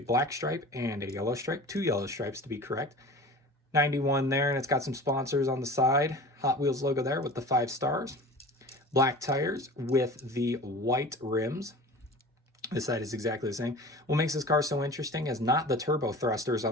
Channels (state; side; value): normal; both; correlation 0.38